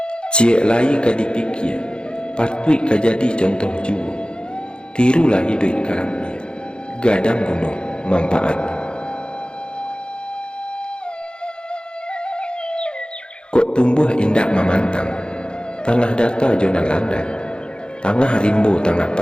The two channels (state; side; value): late; right; 0.050 ms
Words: Ciek lai kadipikir, patut kajadi contoh juru, tirulah hidup karamnya, gadang gunung manfaat. Kok tumbuh indah memantang, tanah data jona landai, tangah rimbo tangah